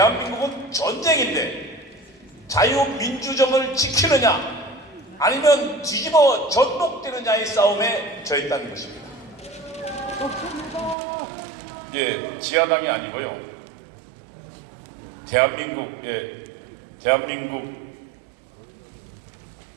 전쟁인데 자유민주정을 지키느냐 아니면 뒤집어 전복되느냐의 싸움에 처했다는 것입니다. 예, 지하당이 아니고요. 대한민국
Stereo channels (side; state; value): left; drops out; at 11.0 s